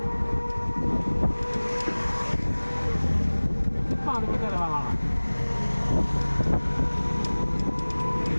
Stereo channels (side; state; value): both; inverted; correlation -1.00